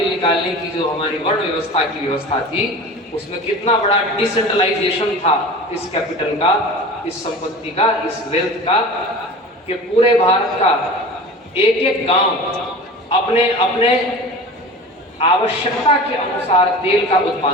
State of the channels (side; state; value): both; normal; correlation 0.36